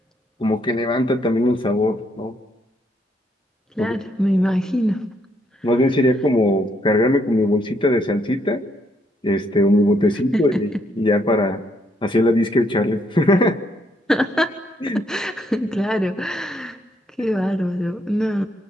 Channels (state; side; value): normal; both; correlation 0.73